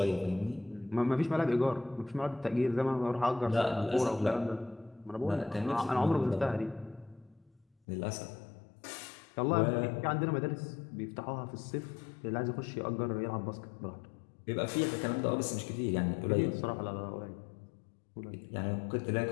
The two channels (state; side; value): drops out; right; at 7.7 s